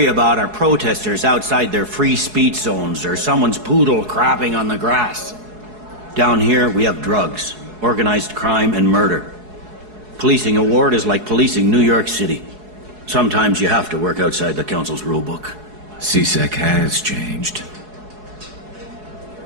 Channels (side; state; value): left; late; 4.7 ms